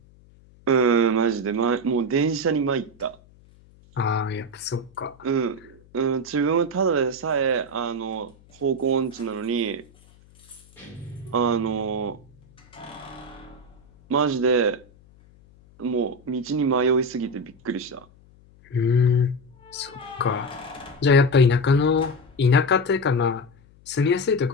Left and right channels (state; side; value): noise; left; hum, 27 dB below the sound